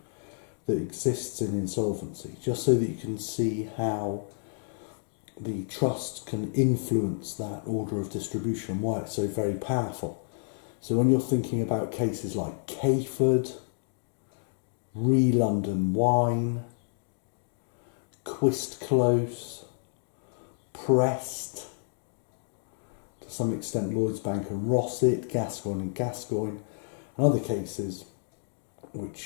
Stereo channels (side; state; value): right; silent; digital silence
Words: that exists in insolvency, just so that you can see how the trust can influence that order of distribution and why it's so very powerful. So when you're thinking about cases like Cayford, London Wine, Quist Close, Prest, to some extent Lloyds Bank and Rossett, Gascoigne and Gascoigne, and other cases